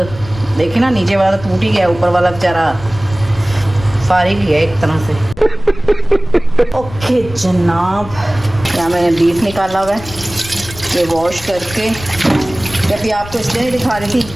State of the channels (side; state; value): left; noise; rumble, 15 dB below the sound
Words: देखिए ना, नीचे वाला टूट ही गया, ऊपर वाला बेचारा फारिग ही है एक तरह से। ओके जनाब, यहाँ मैंने बीफ निकाला हुआ है, ये वॉश करके, जब भी आपको इसलिए दिखा रही थी,